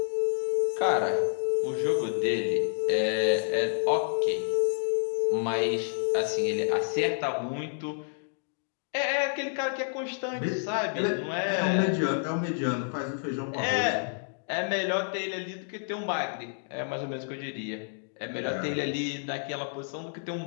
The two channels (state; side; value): silent; right; digital silence